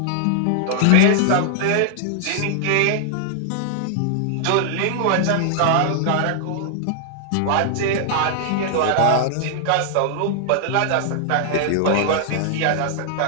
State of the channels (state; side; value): different; both; correlation -0.01